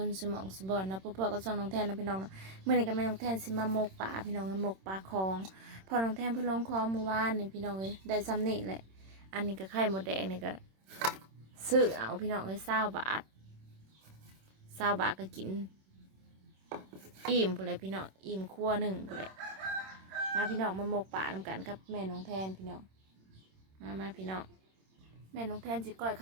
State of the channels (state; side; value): late; left; 26 ms